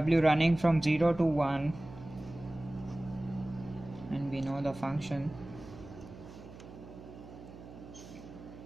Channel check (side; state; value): right; noise; hum, 16 dB below the sound